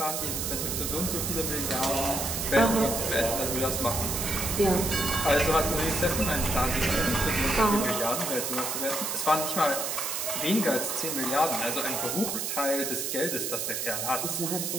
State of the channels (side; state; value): right; noise; hiss, 2 dB below the sound